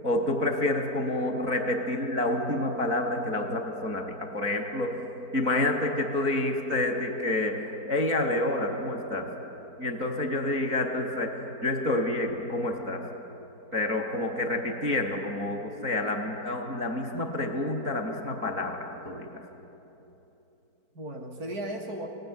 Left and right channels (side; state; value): left; late; 4.5 ms